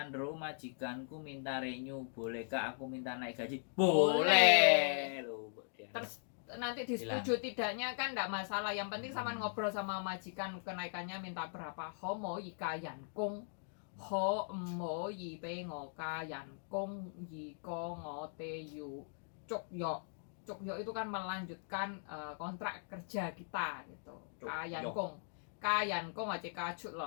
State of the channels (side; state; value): right; silent; digital silence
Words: majikanku minta renew, bolehkah aku minta naik gaji? Boleh. Loh, terus nanti disetujui tidaknya kan enggak masalah, yang penting sama ngobrol sama majikan kenaikannya minta berapa. Ho mo yi ka yan kong, ho mo yi pe ngo ka yan kong, yi ko ngo te yu cuk yo. Cuk yo itu kan melanjutkan kontrak kerja kita gitu. Kayan kong. Kayan kong aja kacut